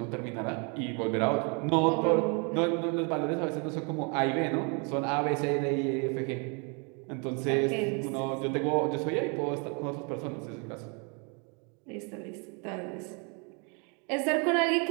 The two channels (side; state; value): left; quieter; 34.9 dB